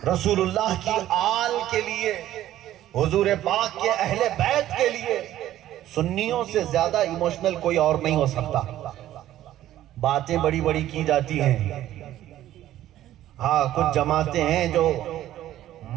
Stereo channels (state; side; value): quieter; left; 13.2 dB